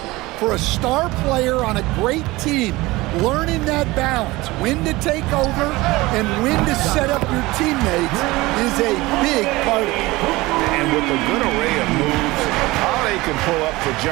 For a star player on a great team, learning that balance, when to take over and when to set up your teammates, is a big part of it. And with a good array of moves, Holiday can pull up for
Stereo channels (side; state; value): left; quieter; 20.5 dB